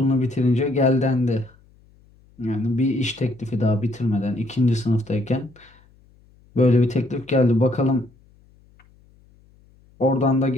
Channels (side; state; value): left; noise; hum, 30 dB below the sound